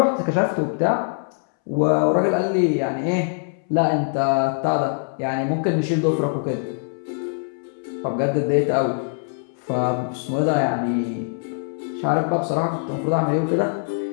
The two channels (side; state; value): right; silent; 64 dB below the other